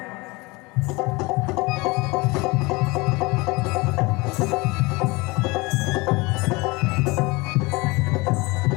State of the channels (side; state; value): right; quieter; 24.4 dB